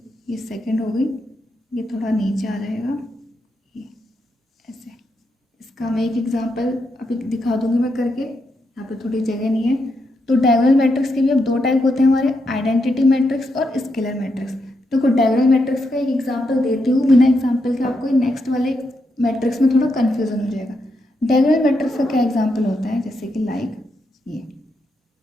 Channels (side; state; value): both; normal; correlation 0.82